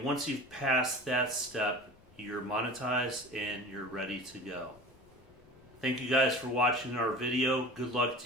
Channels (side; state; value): left; noise; rumble, 29 dB below the sound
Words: once you've passed that step, you're monetized and you're ready to go. Thank you guys for watching our video. Good luck